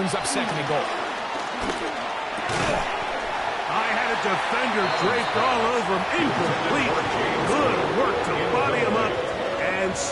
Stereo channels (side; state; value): both; identical; correlation 1.00